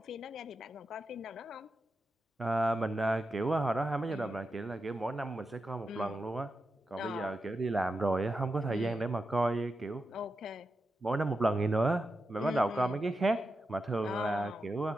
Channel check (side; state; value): both; normal; correlation 0.89